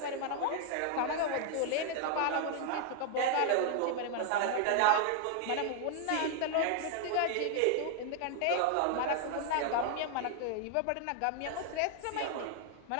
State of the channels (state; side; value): different; both; correlation 0.00